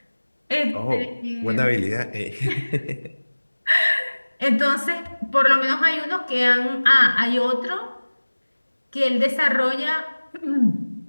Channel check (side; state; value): both; inverted; correlation -1.00